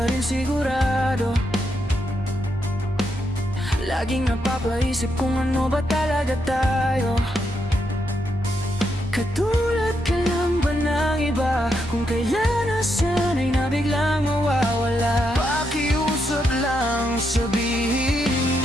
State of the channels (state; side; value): normal; both; correlation 0.81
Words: rin sigurado. Laging napapaisip kung ano ba talaga tayo. Katulad ka lang ba ng iba? Kung kailan na sana'y nabiglang mawawala. Pakiusap lang, sabihin